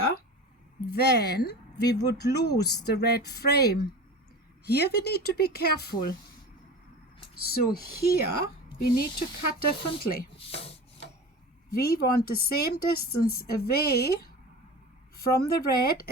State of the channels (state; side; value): normal; both; correlation 0.34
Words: then we would lose the red frame. Here we need to be careful. So here we need to cut differently. We want the same distance away from the red